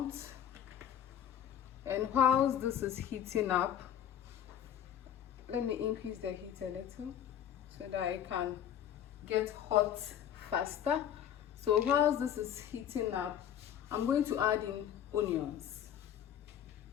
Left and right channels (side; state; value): right; quieter; 9.8 dB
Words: And whilst this is heating up, let me increase the heat a little so that it can get hot faster. So whilst this is heating up, I'm going to add in onions.